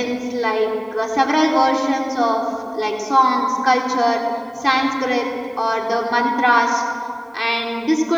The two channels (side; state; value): both; identical; correlation 1.00